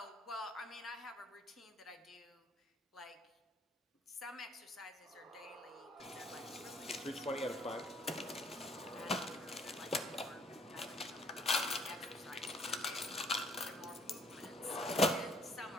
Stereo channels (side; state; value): both; normal; correlation 0.61